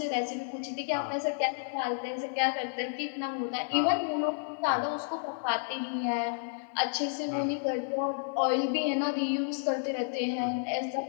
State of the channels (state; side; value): silent; right; digital silence